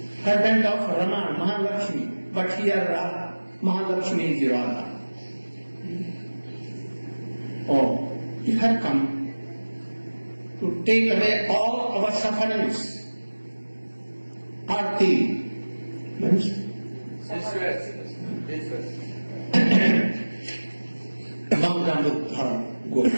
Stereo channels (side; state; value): both; inverted; correlation -1.00